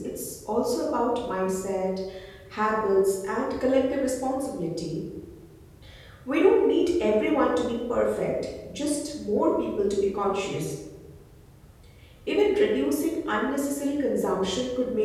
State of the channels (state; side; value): identical; both; correlation 1.00